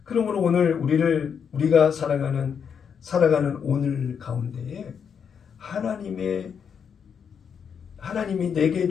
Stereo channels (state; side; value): quieter; right; 7.1 dB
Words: 그러므로 오늘 우리가 살아가는 오늘 가운데에 하나님이 내게